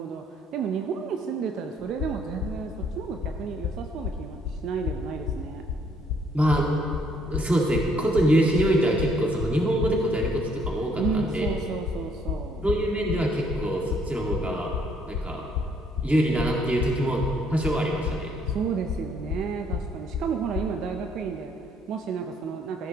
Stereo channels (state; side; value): normal; both; correlation 0.66